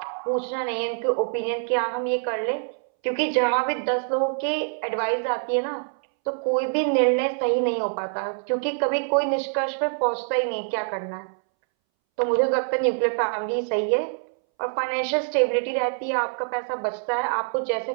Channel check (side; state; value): left; silent; 62 dB below the other